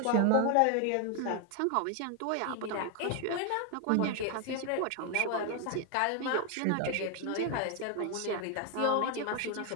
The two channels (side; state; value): both; different; correlation 0.01